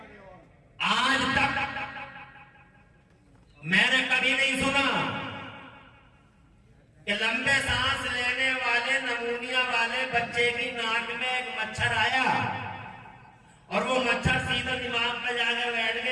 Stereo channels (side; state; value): both; identical; correlation 1.00